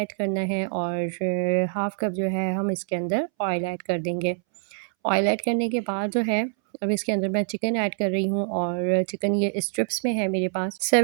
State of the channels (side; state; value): left; silent; 62 dB below the other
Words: करना है और हाफ़ कप जो है हम इसके अंदर ऑयल ऐड कर देंगे। ऑयल ऐड करने के बाद जो है अब इसके अंदर मैं चिकन ऐड कर रही हूँ और चिकन ये स्ट्रिप्स में है मेरे पास